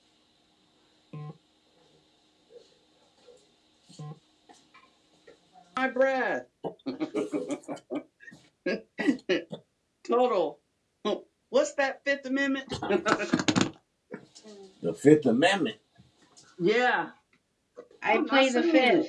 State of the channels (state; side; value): identical; both; correlation 1.00